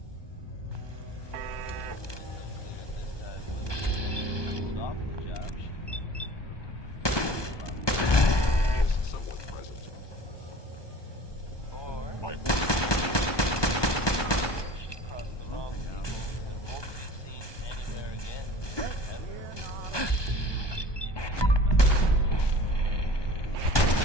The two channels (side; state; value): right; late; 1.2 ms